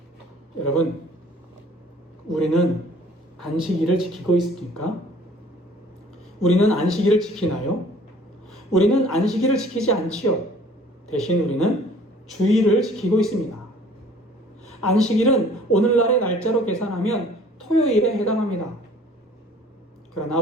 여러분, 우리는 안식일을 지키고 있습니까? 우리는 안식일을 지키나요? 우리는 안식일을 지키지 않지요. 대신 우리는 주일을 지키고 있습니다. 안식일은 오늘날의 날짜로 계산하면 토요일에 해당합니다. 그러나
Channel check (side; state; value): both; normal; correlation 0.53